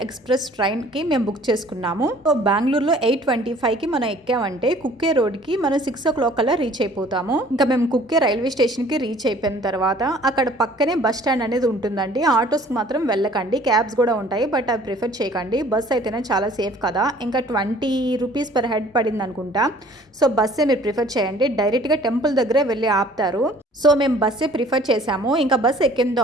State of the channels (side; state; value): both; normal; correlation 0.53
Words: ఎక్స్ప్రెస్ ట్రైన్కి మేము బుక్ చేసుకున్నాము. సో బెంగళూరులో 8:25కి మనం ఎక్కామంటే కుక్కే రోడ్కి మనం 6 o'clock కల్లా రీచ్ అయిపోతాము. ఇంకా మేము కుక్కే రైల్వే స్టేషన్కి రీచ్ అయిపోయిన తర్వాత అక్కడ పక్కనే బస్ స్టాండ్ అనేది ఉంటుందండి. ఆటోస్కి మాత్రం వెళ్ళకండి, క్యాబ్స్ కూడా ఉంటాయి, బట్ అవి ప్రిఫర్ చేయకండి. బస్ అయితేనే చాలా సేఫ్ కదా. ఇంకా 20 రూపీస్ పర్ హెడ్ పడింది అనుకుంటా. సో బస్సే మీరు ప్రిఫర్ చేయండి. డైరెక్ట్గా టెంపుల్ దగ్గరే వెళ్ళి ఆపుతారు. సో మేము బస్సే ప్రిఫర్ చేసాము. ఇంకా బస్ ఎక్కిన